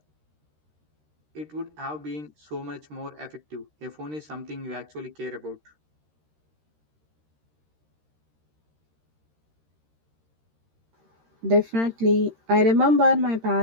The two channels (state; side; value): late; left; 13 ms